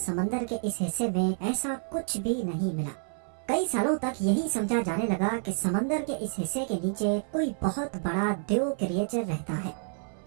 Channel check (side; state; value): left; silent; 59 dB below the other